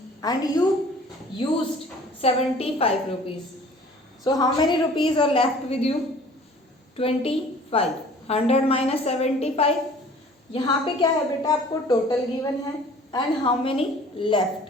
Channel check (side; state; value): both; normal; correlation 0.50